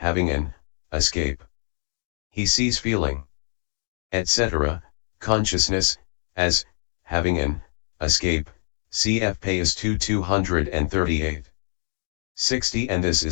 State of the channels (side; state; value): right; silent; digital silence